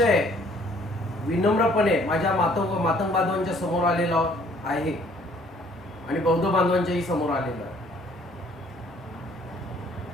विनम्रपणे माझ्या मातंग बांधवांच्या समोर आलेलो आहे आणि बौद्ध बांधवांच्याही समोर आलेलो आहे.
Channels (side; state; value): both; normal; correlation 0.59